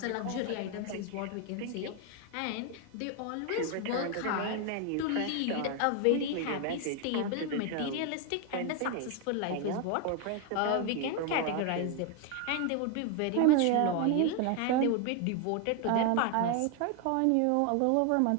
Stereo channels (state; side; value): different; both; correlation 0.01